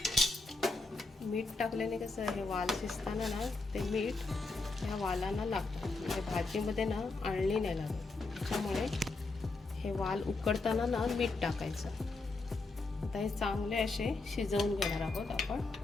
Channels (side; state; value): right; quieter; 3.5 dB